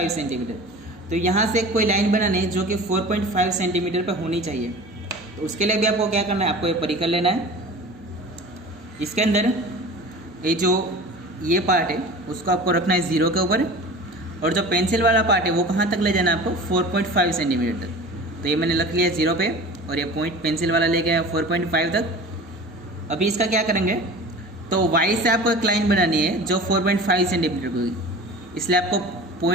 centimetre. तो यहाँ से कोई लाइन बनानी है जो कि 4.5 सेंटीमीटर पर होनी चाहिए। तो उसके लिए भी आपको क्या करना है, आपको ये परिकर लेना है। इसके अंदर ये जो ये पार्ट है उसको आपको रखना है 0 के ऊपर, और जो पेंसिल वाला पार्ट है वो कहाँ तक ले जाना है आपको, 4.5 सेंटीमीटर तक। तो ये मैंने रख लिया 0 पे और ये पॉइंट पेंसिल वाला ले गया 4.5 तक। अभी इसका क्या करेंगे, तो y से आपको एक लाइन बनानी है जो 4.5 सेंटीमीटर की होगी, इसलिए आपको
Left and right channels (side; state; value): both; normal; correlation 0.38